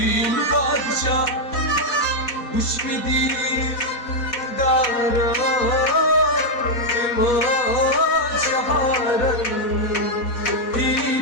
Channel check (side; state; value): right; late; 4.1 ms